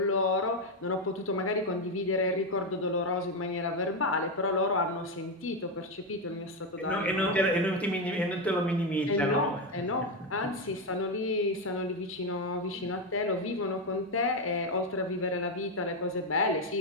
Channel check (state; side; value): normal; both; correlation 0.08